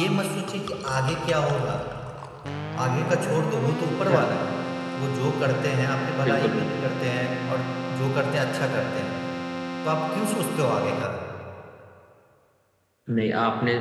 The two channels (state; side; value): identical; both; correlation 1.00